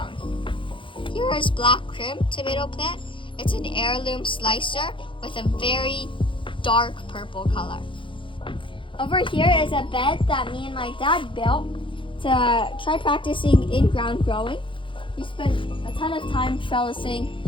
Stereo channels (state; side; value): late; right; 0.25 ms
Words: Here is Black Crim tomato plant. It's an heirloom slicer with a very dark purple color. Over here is a bed that me and my dad built to try practicing in-ground growing. We spent a ton of time trellising